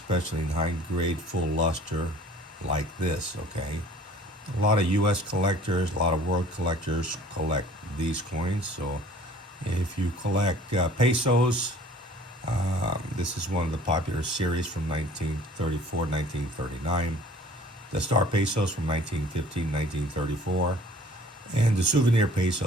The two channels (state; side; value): normal; both; correlation 0.51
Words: in high grade full luster like this. Okay, a lot of U.S. collectors, a lot of world collectors collect these coins. So if you collect pesos, this is one of the popular series from 1934, 1939. The star pesos from 1915, 1934. And the souvenir